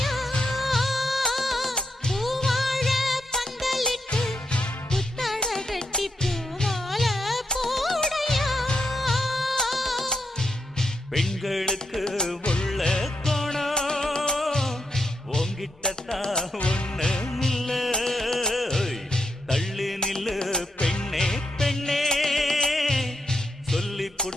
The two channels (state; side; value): normal; both; correlation 0.82